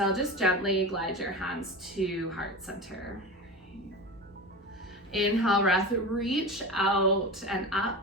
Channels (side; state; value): both; normal; correlation 0.28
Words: just gently glide your hands to heart center. Inhale breath, reach out and